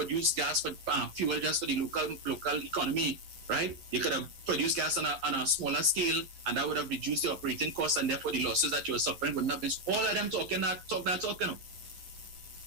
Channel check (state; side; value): late; left; 11 ms